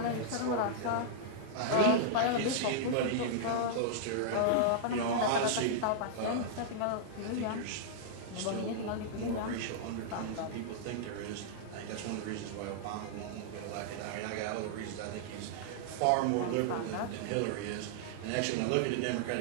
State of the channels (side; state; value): both; different; correlation -0.01